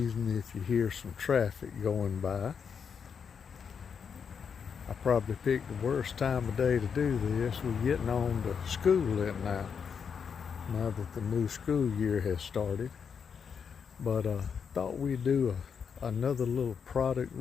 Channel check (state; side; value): quieter; right; 6.6 dB